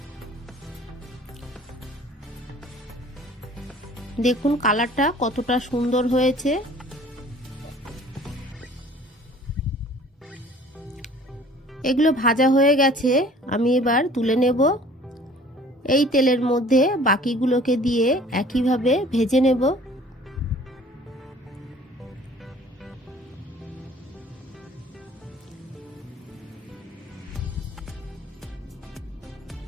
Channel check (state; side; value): normal; both; correlation 0.50